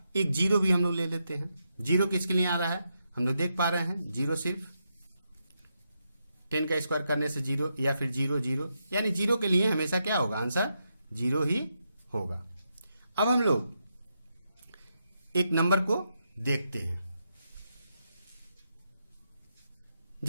एक 0 भी हम लोग ले लेते हैं। 0 किसके लिए आ रहा है, हम लोग देख पा रहे हैं 0 सिर्फ 10 का स्क्वायर करने से 0 या फिर 0 0, यानी 0 के लिए हमेशा क्या होगा, आंसर 0 ही होगा। अब हम लोग एक नंबर को देखते हैं।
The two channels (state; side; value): inverted; both; correlation -0.83